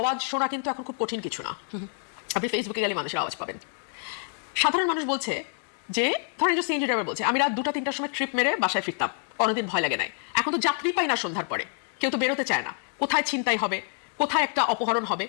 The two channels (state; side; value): silent; right; 56 dB below the other